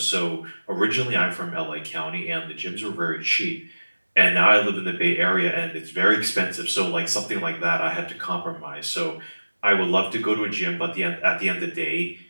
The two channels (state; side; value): inverted; both; correlation -1.00